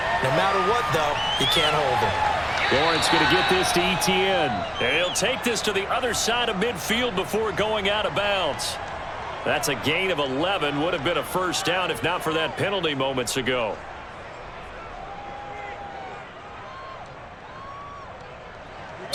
No matter what, though, you can't hold him. Lawrence going to get this to Etienne. And he'll take this to the other side of midfield before going out of bounds. That's a gain of 11. Would have been a first down if not for that penalty moments ago.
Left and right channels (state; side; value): identical; both; correlation 1.00